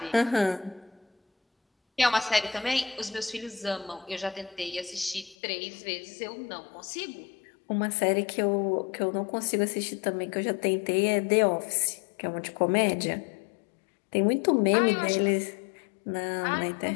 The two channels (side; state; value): right; drops out; at 5.4 s